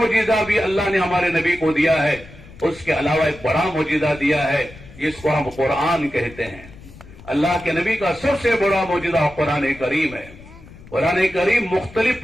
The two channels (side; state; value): left; noise; rumble, 19 dB below the sound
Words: بھی اللہ نے ہمارے نبی کو دیا ہے. اس کے علاوہ ایک بڑا معجزہ دیا ہے جس کو ہم قرآن کہتے ہیں. اللہ کے نبی کا سب سے بڑا معجزہ قرآن کریم ہے. قرآن کریم مختلف